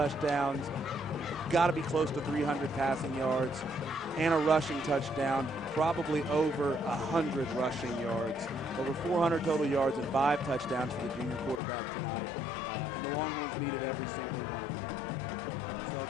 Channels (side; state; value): right; drops out; at 11.6 s